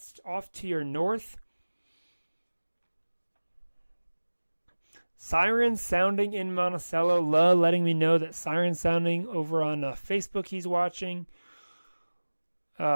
off to your north. Sirens sounding in Monticello. Letting me know that sirens sounding over on Facebook he's watching.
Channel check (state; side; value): inverted; both; correlation -1.00